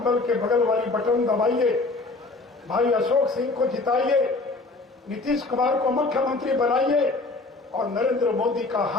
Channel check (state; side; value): quieter; right; 3.4 dB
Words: के बगल वाली बटन दबाइए, भाई अशोक सिंह को जिताइए, नीतीश कुमार को मुख्यमंत्री बनाइए और नरेंद्र मोदी का